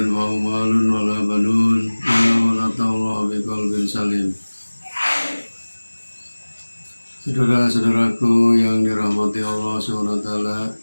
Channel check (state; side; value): inverted; both; correlation -1.00